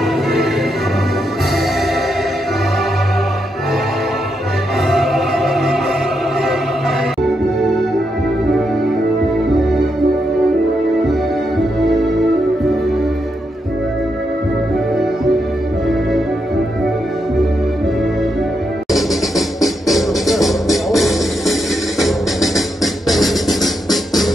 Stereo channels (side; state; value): both; normal; correlation 0.82